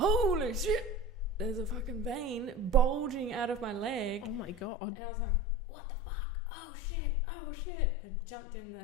shit, there's a fucking vein bulging out of my leg. Oh my God. And I was like, what the fuck? Oh shit. I jumped in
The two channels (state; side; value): drops out; right; at 4.7 s